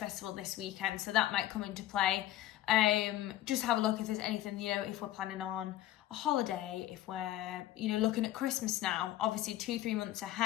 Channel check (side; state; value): right; quieter; 14.0 dB